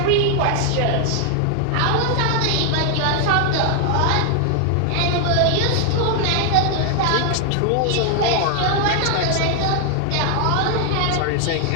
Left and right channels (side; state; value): both; different; correlation 0.00